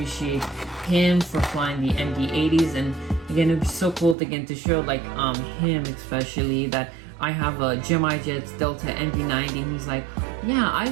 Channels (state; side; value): drops out; left; at 4.2 s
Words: him for flying the MD80s. And again, it'd be so cool to get to show like him especially that I have a Gemini Jets Delta MD90, and he's like, yeah, I